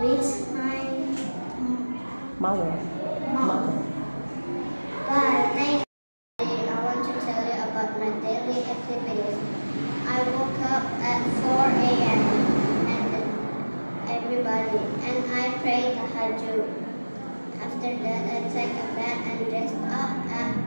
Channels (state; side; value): inverted; both; correlation -1.00